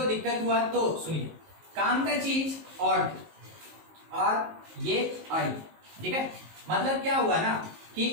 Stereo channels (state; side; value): late; left; 19 ms